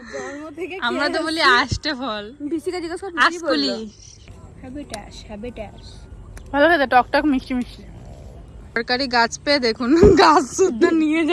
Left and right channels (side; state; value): both; identical; correlation 1.00